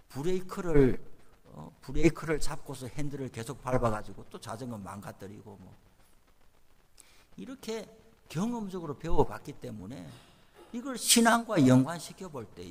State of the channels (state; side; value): identical; both; correlation 1.00